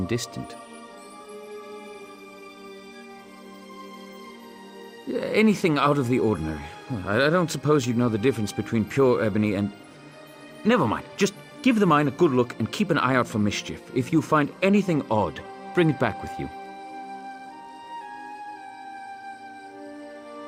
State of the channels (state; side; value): identical; both; correlation 1.00